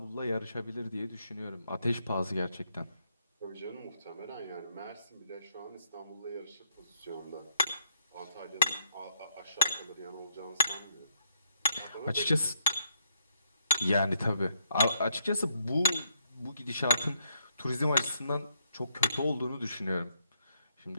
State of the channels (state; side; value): inverted; both; correlation -0.74